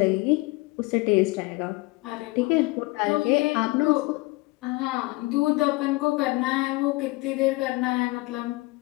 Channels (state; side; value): quieter; right; 23.3 dB